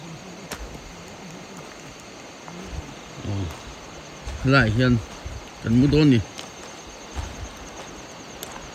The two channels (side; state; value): both; identical; correlation 1.00